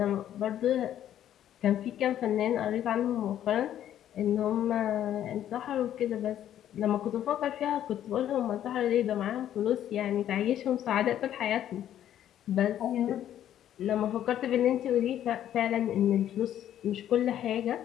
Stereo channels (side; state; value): right; quieter; 11.1 dB